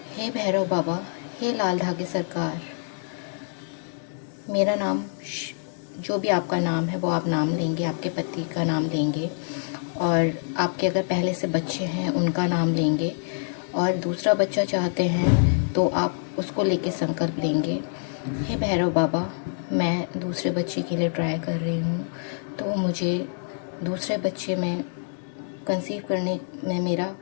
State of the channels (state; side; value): silent; right; digital silence